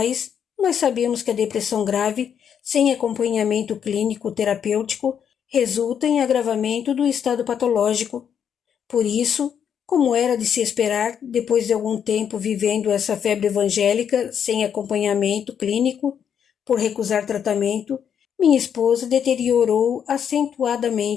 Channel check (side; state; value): right; quieter; 8.2 dB